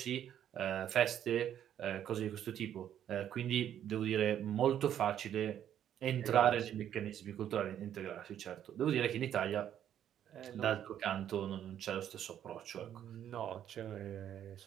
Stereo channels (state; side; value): quieter; left; 10.2 dB